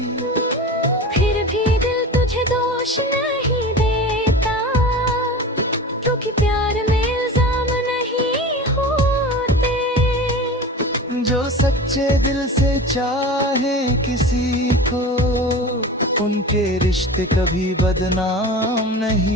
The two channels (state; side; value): normal; both; correlation 0.33